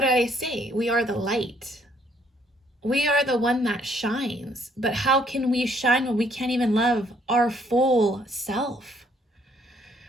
did I say? We are the light. We are the one that shines. But how can we shine when we can't even love our full self?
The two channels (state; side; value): normal; both; correlation 0.66